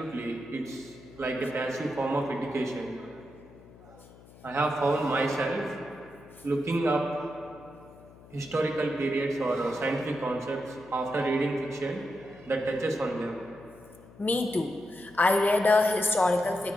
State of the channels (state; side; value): noise; left; hum, 22 dB below the sound